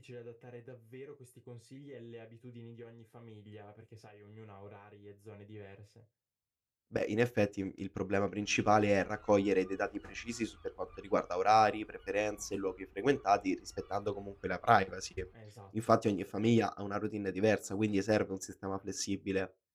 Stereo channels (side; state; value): both; identical; correlation 1.00